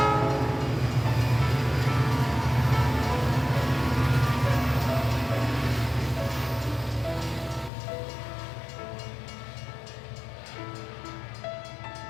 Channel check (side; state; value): right; drops out; at 7.7 s